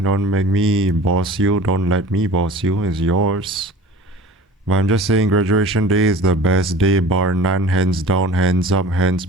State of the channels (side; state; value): both; normal; correlation 0.42